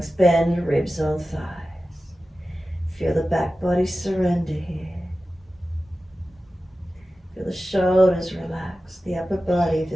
bend, ribs on thighs. Feel the back body surrender here. Feel the shoulders relax, the upper body, if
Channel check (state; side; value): normal; both; correlation 0.94